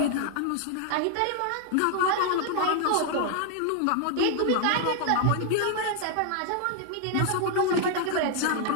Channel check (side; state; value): both; different; correlation 0.00